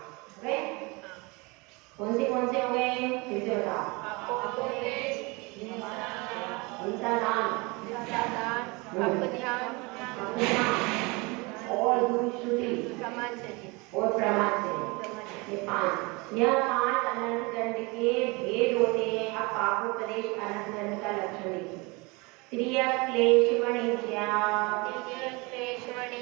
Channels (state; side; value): quieter; left; 26.6 dB